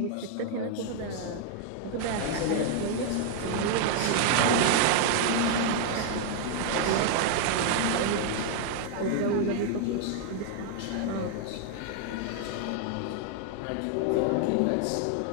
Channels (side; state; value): both; different; correlation 0.00